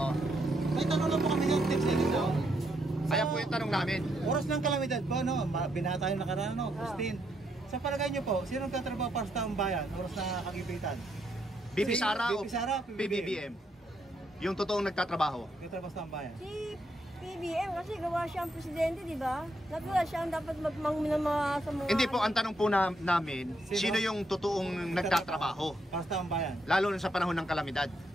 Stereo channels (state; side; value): normal; both; correlation 0.77